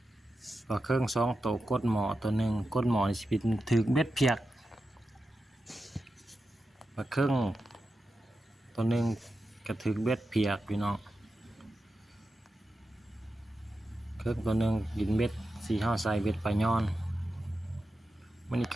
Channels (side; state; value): both; normal; correlation 0.90